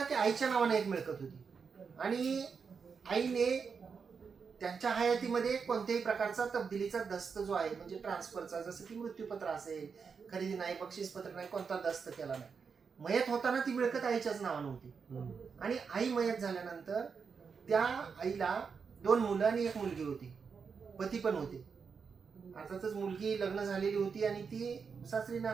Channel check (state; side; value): quieter; left; 5.8 dB